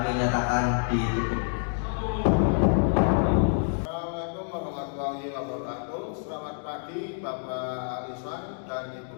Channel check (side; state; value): right; silent; digital silence